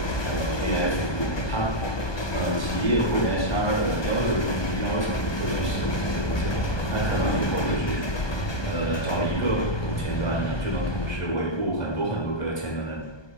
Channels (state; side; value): late; right; 1.2 ms